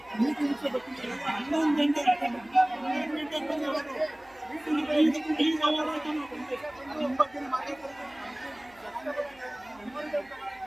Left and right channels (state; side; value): noise; right; hum, 28 dB below the sound